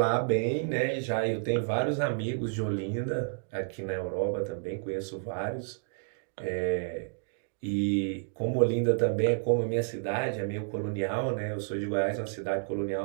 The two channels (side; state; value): left; silent; digital silence